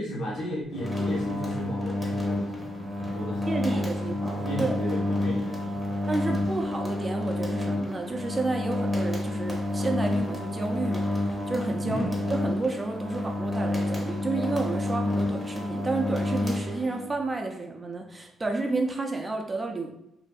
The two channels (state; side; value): normal; both; correlation 0.86